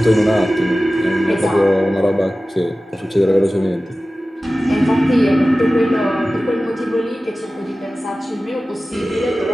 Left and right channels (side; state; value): both; normal; correlation 0.96